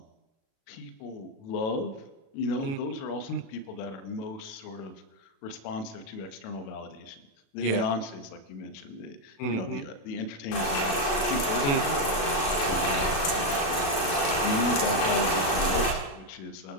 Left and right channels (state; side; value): late; right; 36 ms